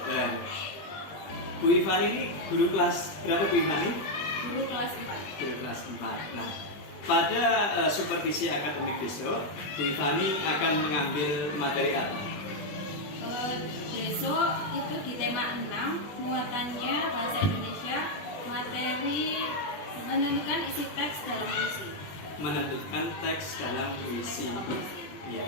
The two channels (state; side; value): late; right; 20 ms